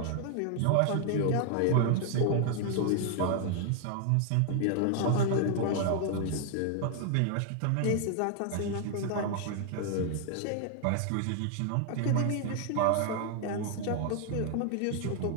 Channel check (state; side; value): different; both; correlation 0.00